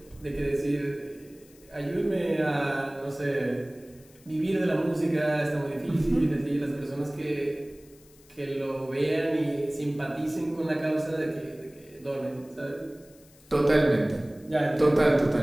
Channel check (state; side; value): noise; left; hiss, 27 dB below the sound